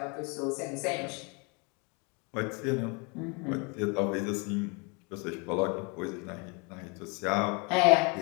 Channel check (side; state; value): right; quieter; 31.9 dB